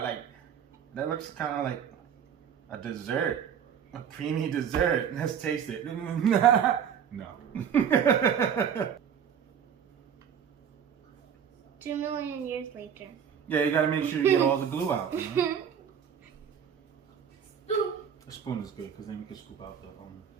like, that looks kind of like a dessert. A creamy dessert. Let's taste it. No. 2 million years later. Yeah, you gotta make sure you get all the glue out. You know? A spoon is good because then you can scoop out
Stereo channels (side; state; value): left; quieter; 8.0 dB